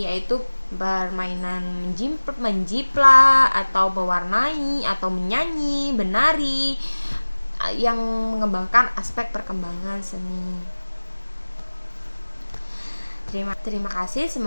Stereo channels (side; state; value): both; inverted; correlation -1.00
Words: yaitu permainan menjiplak atau mewarnai atau menyanyi, menari, yang mengembangkan aspek perkembangan seni. Terima kasih,